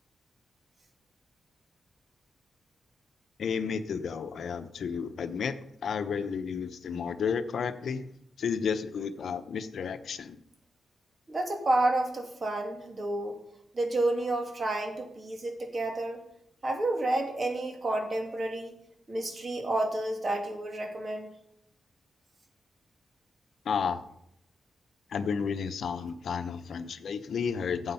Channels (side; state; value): both; normal; correlation 0.83